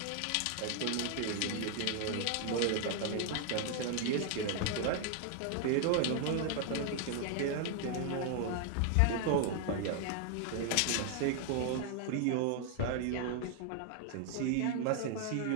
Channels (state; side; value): different; both; correlation 0.00